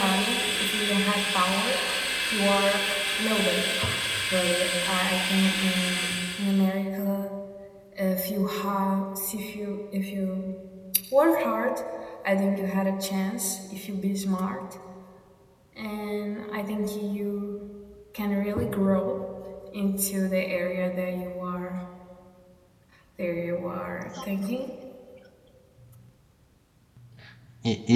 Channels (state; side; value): identical; both; correlation 1.00